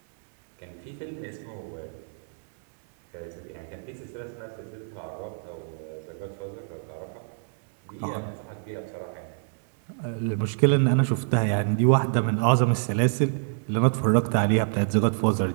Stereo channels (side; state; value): left; silent; 60 dB below the other